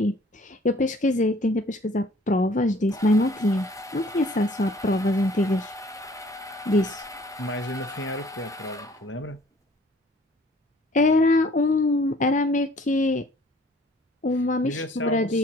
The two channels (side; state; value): both; normal; correlation 0.55